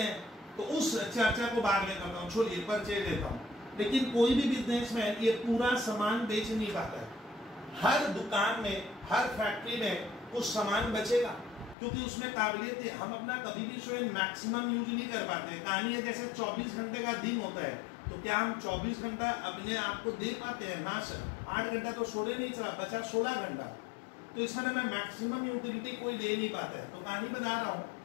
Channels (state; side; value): drops out; right; at 11.8 s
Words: तो उस चर्चा को बाद में करता हूँ, छोड़िए परचेज लेता हूँ। लेकिन कोई भी बिजनेसमैन ये पूरा सामान बेच नहीं पाता है। हर दुकान में, हर फैक्ट्री में कुछ सामान बचेगा, क्योंकि उसमें काबिलियत है। हम अपना कभी भी स्वयं मैक्सिमम यूज नहीं कर पाते। कहानी है जैसे 24 घंटे का दिन होता है, तो क्या हम 24 घंटा अपने आप को दे पाते हैं, ना सर। 8 घंटा तो सोने नहीं चला, बचा 16 घंटा। तो इस तरह मैं मैक्सिमम यूटिलिटी कोई दे नहीं पाता है। तो कहानी बता रहा हूँ